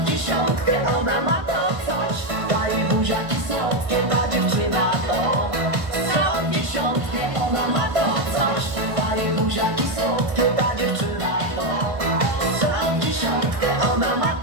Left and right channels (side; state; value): left; late; 1.6 ms